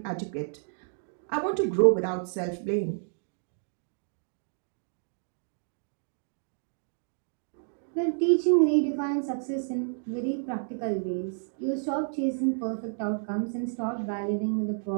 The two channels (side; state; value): left; silent; digital silence